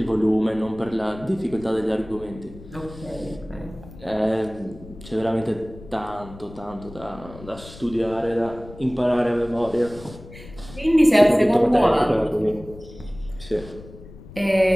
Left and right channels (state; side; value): noise; left; rumble, 17 dB below the sound